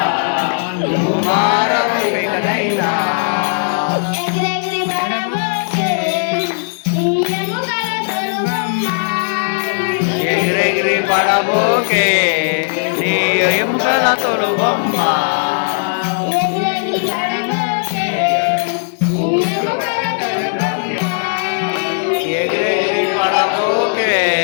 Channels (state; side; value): silent; right; digital silence